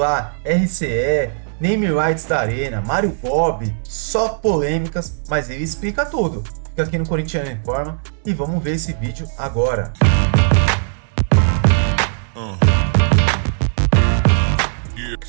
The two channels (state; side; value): silent; left; digital silence